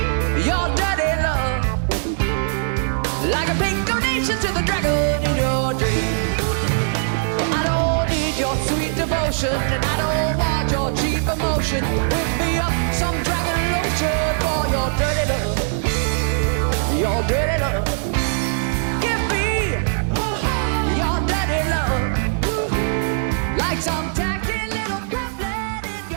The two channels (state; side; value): silent; left; 64 dB below the other